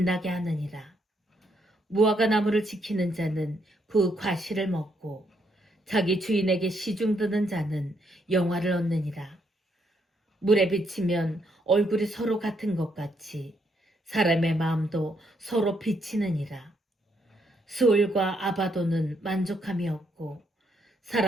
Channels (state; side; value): normal; both; correlation 0.75